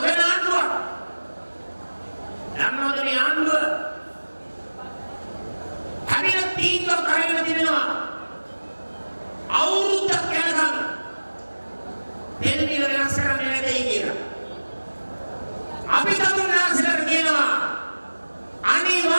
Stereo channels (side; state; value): both; inverted; correlation -1.00